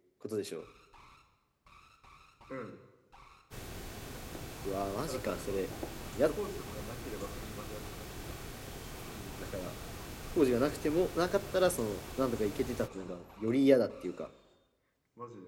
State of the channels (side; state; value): both; identical; correlation 1.00